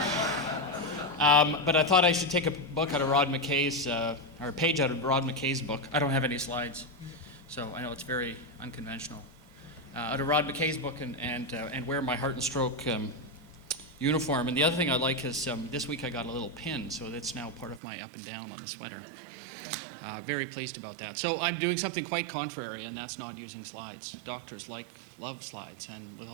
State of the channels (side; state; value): left; drops out; at 17.8 s